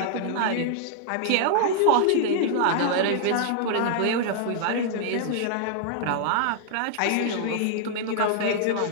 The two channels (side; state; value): both; different; correlation -0.01